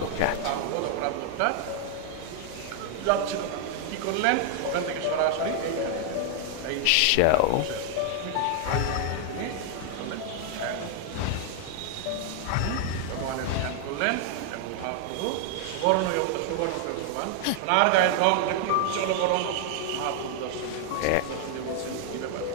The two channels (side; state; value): both; different; correlation 0.00